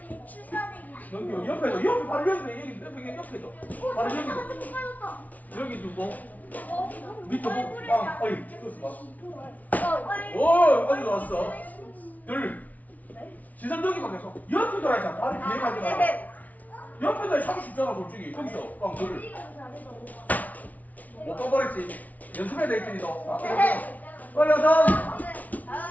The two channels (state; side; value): late; right; 0.073 ms